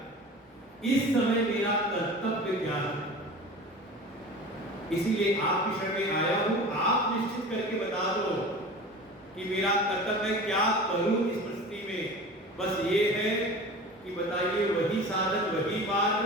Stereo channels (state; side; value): normal; both; correlation 0.36